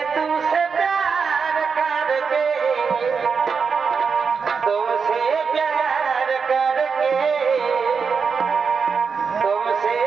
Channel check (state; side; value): quieter; left; 5.6 dB